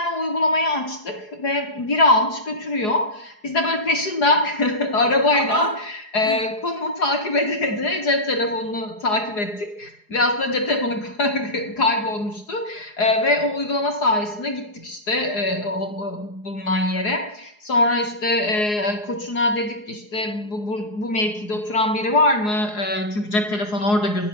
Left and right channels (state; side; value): late; right; 4.8 ms